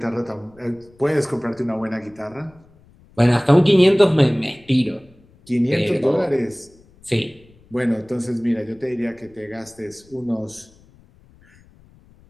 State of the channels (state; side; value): noise; left; rumble, 28 dB below the sound